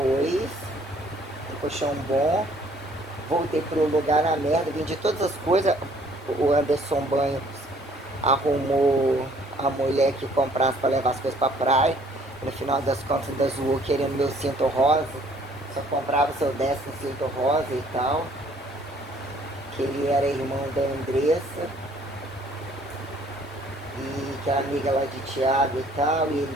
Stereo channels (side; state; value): both; normal; correlation 0.59